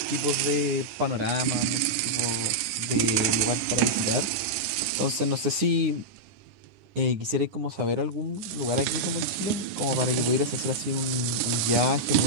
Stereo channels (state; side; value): late; left; 10 ms